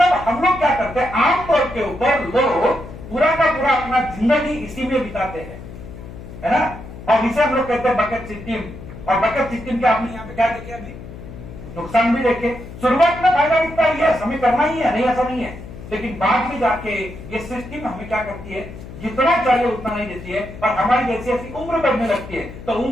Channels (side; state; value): left; noise; hum, 14 dB below the sound